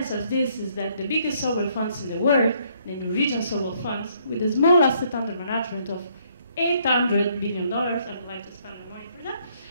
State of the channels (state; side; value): inverted; both; correlation -0.68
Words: of this is that the biggest SWF funds in the world, the Norwegian SWF funds, with a small asset under management of $800 million, I would like to spend the money for that,